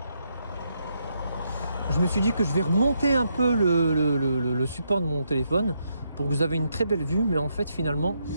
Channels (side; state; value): both; inverted; correlation -0.79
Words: je vais remonter un peu le support de mon téléphone pour que vous avez une très belle vue, mais en fait finalement